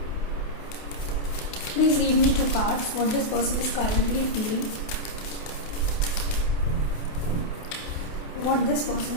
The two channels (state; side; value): late; right; 28 ms